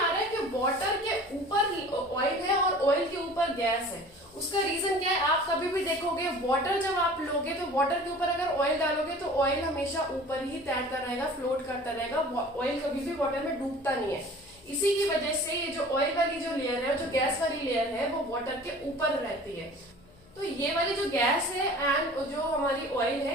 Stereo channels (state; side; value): noise; left; hum, 27 dB below the sound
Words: रहा है कि वाटर के ऊपर ऑयल है और ऑयल के ऊपर गैस है। उसका रीजन क्या है, आप कभी भी देखोगे वाटर जब आप लोगे तो वाटर के ऊपर अगर ऑयल डालोगे तो ऑयल हमेशा ऊपर ही तैरता रहेगा, फ्लोट करता रहेगा, ऑयल कभी भी वाटर में डूबता नहीं है। इसी की वजह से ये जो ऑयल वाली जो लेयर है, जो गैस वाली लेयर है, वो वाटर के ऊपर रहती है। तो ये वाली जो गैस है एंड जो हमारी ऑयल